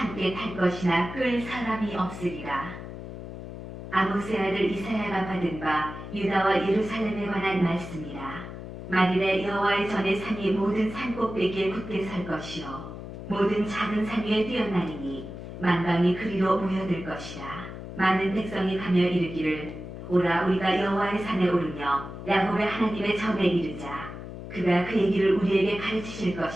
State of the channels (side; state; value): left; noise; hum, 10 dB below the sound